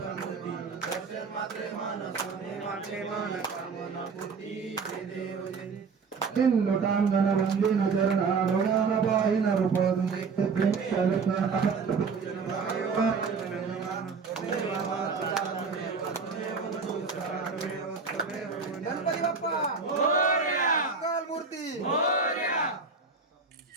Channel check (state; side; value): quieter; left; 5.0 dB